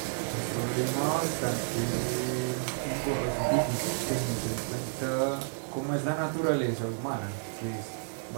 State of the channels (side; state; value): left; silent; digital silence